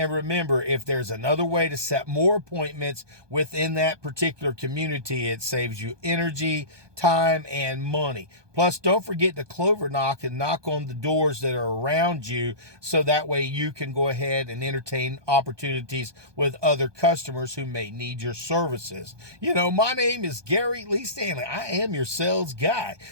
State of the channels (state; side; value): late; left; 1.2 ms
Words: remember, if there's another way to set more appointments within that particular community. It saves you energy, time, and money. Plus, don't forget to clover knock and knock on the doors that are around you, so that way you can go ahead and entertain opportunities with other customers who may need your services. You know, my name is Gary Lee Stanley. I am your sales guy.